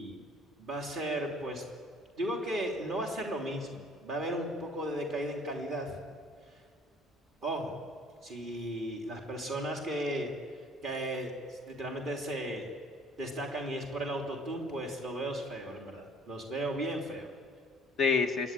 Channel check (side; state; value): both; normal; correlation 0.55